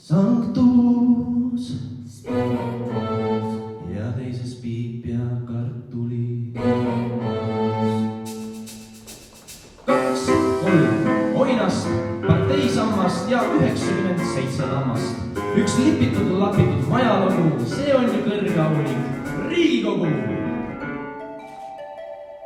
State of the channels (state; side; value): identical; both; correlation 1.00